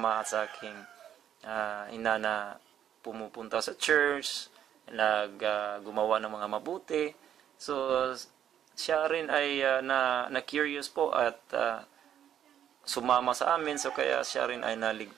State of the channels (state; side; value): quieter; left; 10.0 dB